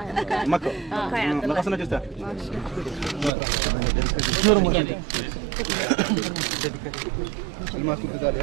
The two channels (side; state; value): left; drops out; at 3.3 s